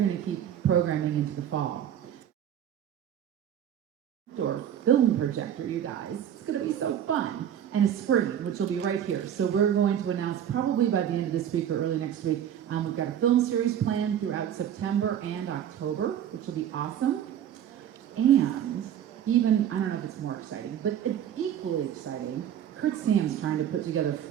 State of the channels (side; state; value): left; quieter; 9.9 dB